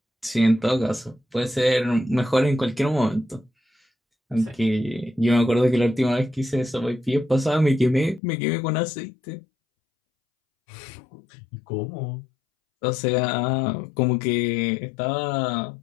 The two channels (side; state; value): right; drops out; at 8.2 s